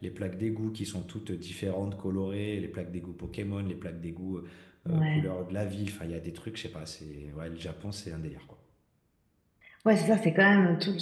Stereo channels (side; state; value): both; identical; correlation 1.00